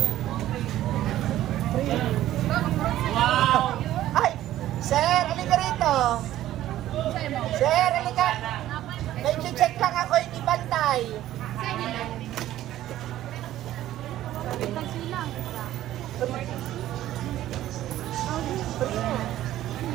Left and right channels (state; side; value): quieter; left; 13.6 dB